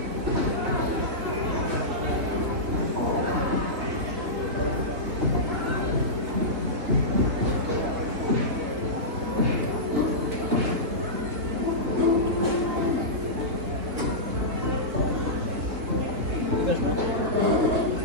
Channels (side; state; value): left; late; 3.9 ms